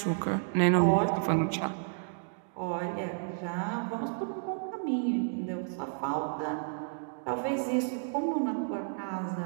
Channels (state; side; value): silent; left; digital silence